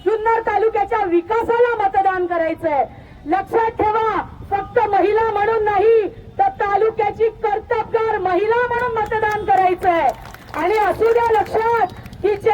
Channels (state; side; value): identical; both; correlation 1.00